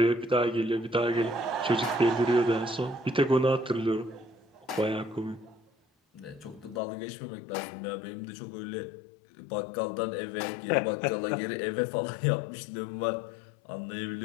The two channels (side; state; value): right; drops out; at 6.8 s